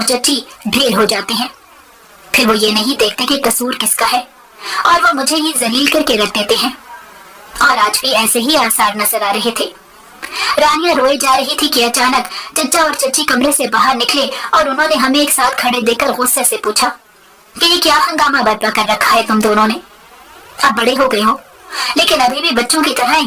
چچی ڈھیر ہو جاتے ہیں۔ پھر وہ یہ نہیں دیکھتے کہ قصور کس کا ہے اور وہ مجھے ہی ذلیل کر کے رکھ دیتے ہیں، اور آج بھی ایسے ہی آثار نظر آ رہے تھے۔ رانیہ روئے جا رہی تھی کہ اچانک چچا اور چچی کمرے سے باہر نکلے اور انہوں نے ہمیں ایک ساتھ کھڑے دیکھ کر غصے سے پوچھا کہ یہ کیا ہنگامہ برپا کر رکھا ہے تم دونوں نے؟ اب بڑے ہو گئے ہو لیکن ابھی بھی بچوں کی طرح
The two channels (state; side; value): identical; both; correlation 1.00